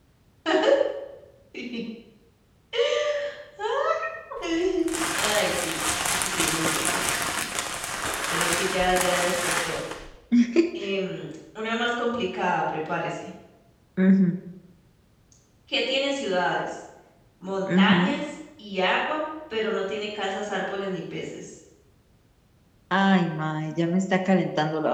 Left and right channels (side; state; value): both; identical; correlation 1.00